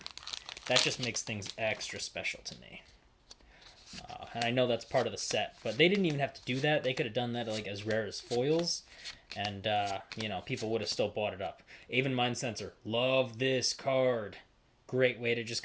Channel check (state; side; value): identical; both; correlation 1.00